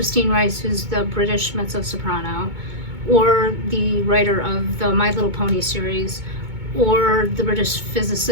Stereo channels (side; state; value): left; late; 2.2 ms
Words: Rice who's the British mezzo-soprano, or the writer of the My Little Pony series, or the British